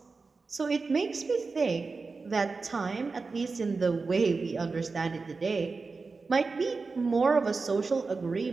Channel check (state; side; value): quieter; left; 4.2 dB